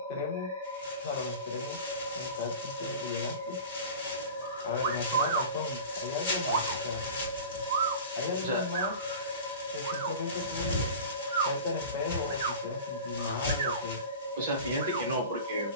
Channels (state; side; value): inverted; both; correlation -0.35